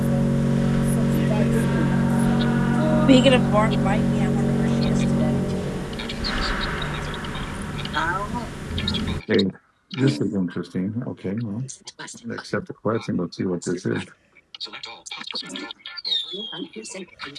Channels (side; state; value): both; identical; correlation 1.00